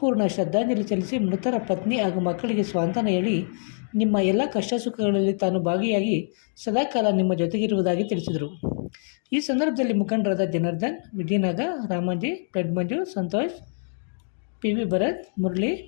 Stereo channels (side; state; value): right; silent; digital silence